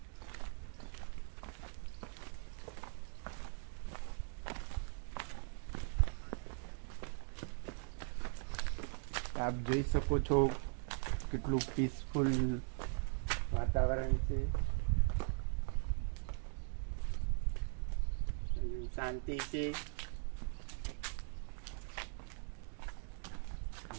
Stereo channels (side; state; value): left; silent; 51 dB below the other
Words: આપ જોઈ શકો છો કેટલું પીસફુલ વાતાવરણ છે, શાંતિ છે.